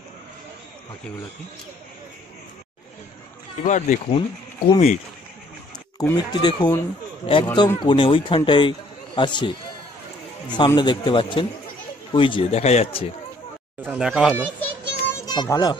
এবার দেখুন কুমির, কুমিরটি দেখুন একদম কোণে ওইখানটায় আছে, সামনে দেখতে পাচ্ছেন, ওই যে দেখা যাচ্ছে, দেখা হলো ভালো,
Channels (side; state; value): both; normal; correlation 0.62